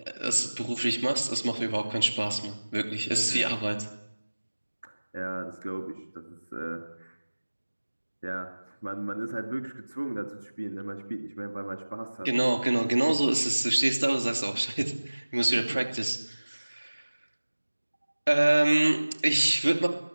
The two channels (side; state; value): both; inverted; correlation -1.00